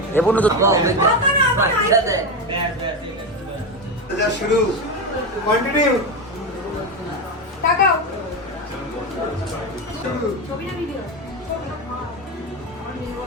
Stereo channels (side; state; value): both; normal; correlation 0.15